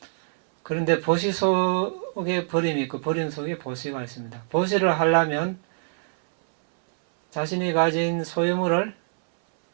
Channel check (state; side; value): silent; left; 62 dB below the other